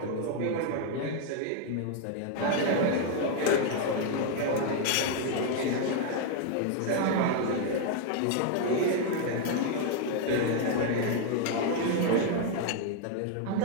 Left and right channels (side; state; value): both; different; correlation 0.00